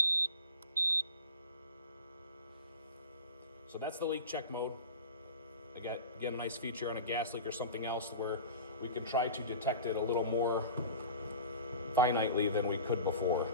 So that's the leak check mode. Again, a nice feature on a gas leak or something else where we can try to detect it a little more finitely than we could before.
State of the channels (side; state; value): both; inverted; correlation -0.35